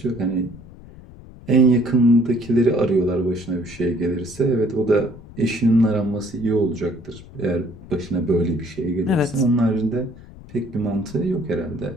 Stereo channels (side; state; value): left; noise; rumble, 18 dB below the sound